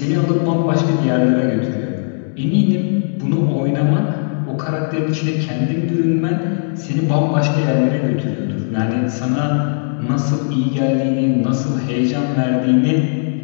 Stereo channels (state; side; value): silent; right; digital silence